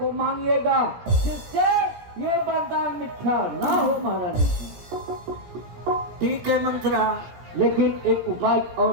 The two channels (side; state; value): left; late; 17 ms